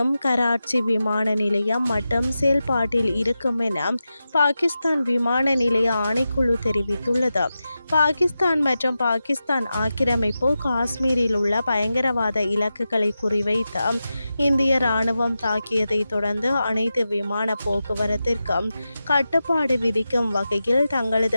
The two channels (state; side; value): inverted; both; correlation -0.92